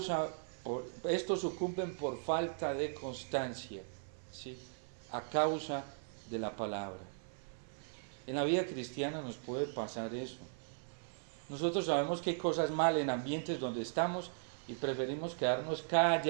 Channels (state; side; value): silent; left; 52 dB below the other